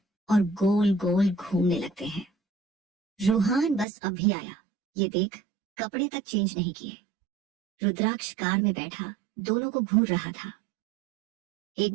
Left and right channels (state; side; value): drops out; left; at 3.9 s